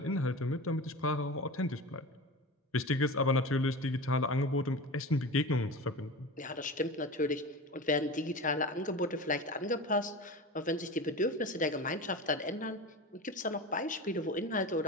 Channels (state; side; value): normal; both; correlation 0.29